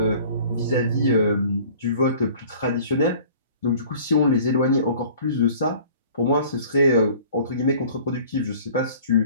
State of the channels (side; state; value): both; inverted; correlation -0.49